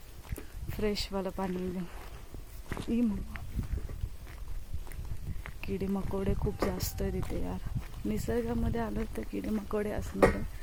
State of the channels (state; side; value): identical; both; correlation 1.00